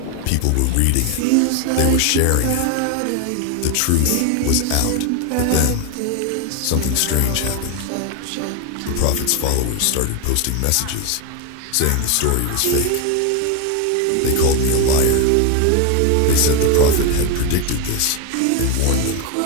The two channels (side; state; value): both; different; correlation 0.01